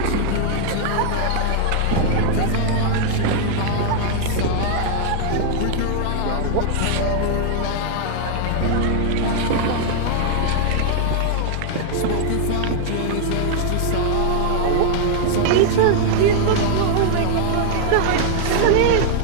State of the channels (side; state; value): both; different; correlation 0.00